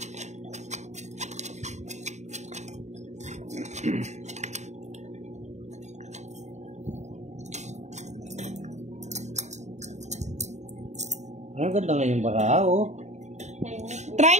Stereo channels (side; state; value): left; late; 0.34 ms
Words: Ang ganda nga yung baka, oh. Try